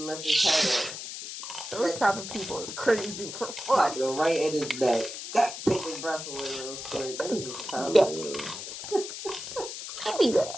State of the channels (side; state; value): left; noise; hiss, 8 dB below the sound